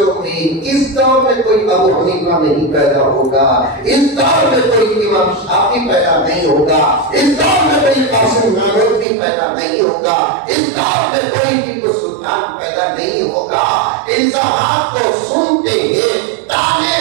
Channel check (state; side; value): drops out; left; at 9.1 s